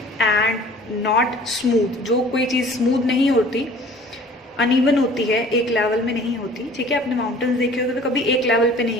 एंड नॉट स्मूथ, जो कोई चीज़ स्मूथ नहीं होती, अनइवन होती है, एक लेवल में नहीं होती। ठीक है, आपने माउंटेन्स देखे होते तो कभी एक लेवल पे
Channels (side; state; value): both; normal; correlation 0.49